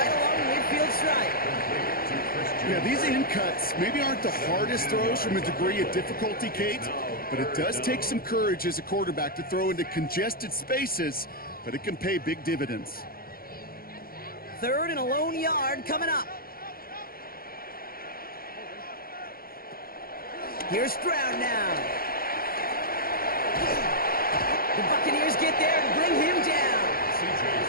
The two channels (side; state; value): right; late; 0.43 ms